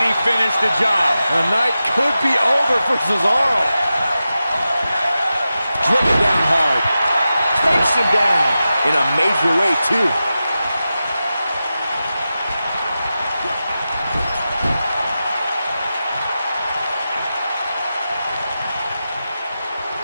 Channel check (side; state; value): both; inverted; correlation -0.92